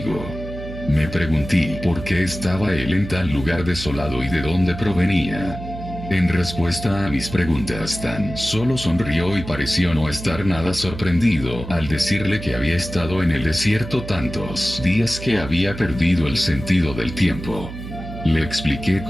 Me pregunté por qué estaba él en tal lugar desolado y de dónde provenía. En respuesta a mis preguntas, tan solo sonrió y pareció no estar nada sorprendido al decirle que había estado en el desierto tantos días que había perdido el sentido del tiempo. Le expliqué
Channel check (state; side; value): noise; right; hum, 10 dB below the sound